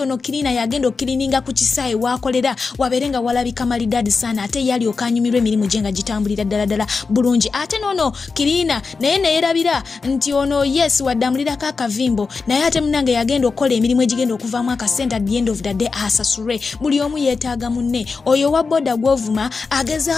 ono kirina yagenda okirininga ku kisaawe waakolera wabeere nga walabika malidaadi sana ate yali okanyumirwa emirimu gye nga gitambulira ddala bulungi ate n'ono kirina naye neerabira nti ono yes waddamulirako akavimbo naye ate munange yagenda okukola emirimu egigenda okuvaamu akasente at the end of the day asasulwe buli omu yeetaaga munne oyo wa boda gw'ovuma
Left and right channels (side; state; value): right; quieter; 4.6 dB